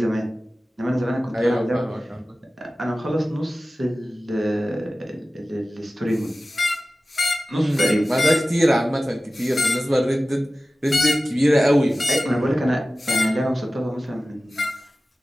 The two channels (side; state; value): both; normal; correlation 0.96